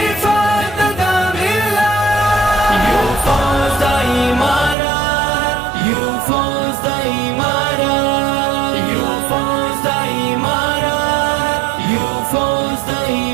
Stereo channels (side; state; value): left; drops out; at 4.8 s